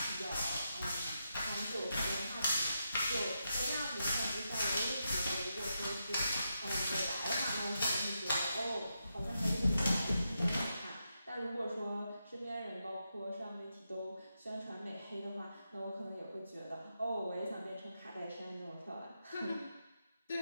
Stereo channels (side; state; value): both; inverted; correlation -0.85